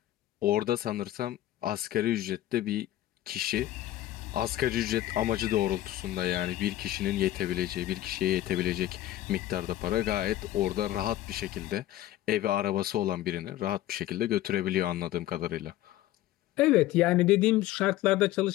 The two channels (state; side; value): quieter; right; 14.4 dB